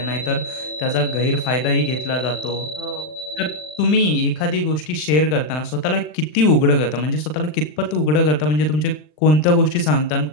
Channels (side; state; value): right; late; 40 ms